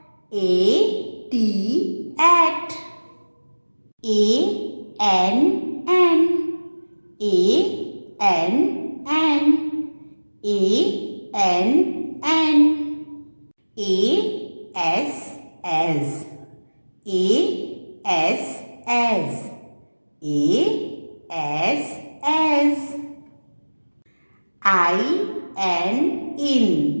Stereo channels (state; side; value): inverted; both; correlation -1.00